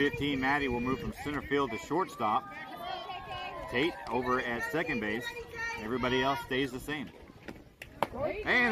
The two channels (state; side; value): identical; both; correlation 1.00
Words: Maddie, will move from center field to shortstop. Tate over at second base. Everybody else stays the same.